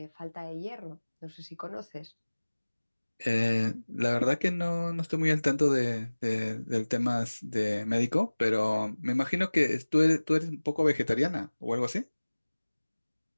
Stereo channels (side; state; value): both; inverted; correlation -1.00